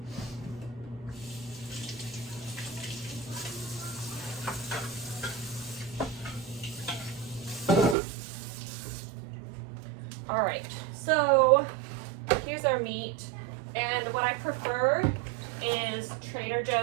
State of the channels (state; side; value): drops out; left; at 8.0 s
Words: All right, so here's our meat. And what I prefer is Trader